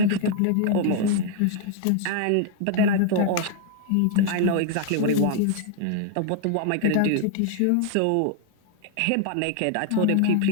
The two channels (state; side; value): different; both; correlation 0.00